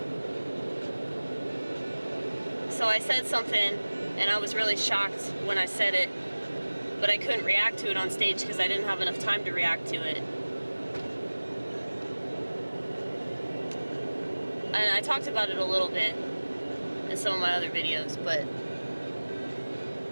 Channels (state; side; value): inverted; both; correlation -1.00